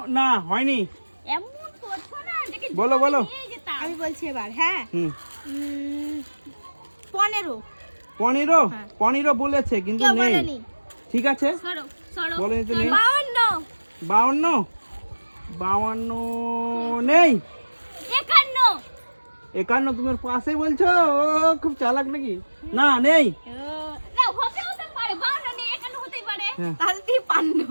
না হয়নি, এমন করছো না দেখি বলো, বলো। আমি বলছি এবার হ্যাঁ হুম 15 15 হ্যাঁ। 15 বলেছে কিন্তু কেউ নেই, বলেনি ঠিক আছে সরো সরো বলেনি তো নেই। 52 52 নেই, 51 51 তুমি ওর পাশেই বলছো, ও খুব চালাক নাকি, না নেই, না হতে পারে 52 নেই 51 হতেই পারে হ্যাঁ। তাহলে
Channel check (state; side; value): inverted; both; correlation -1.00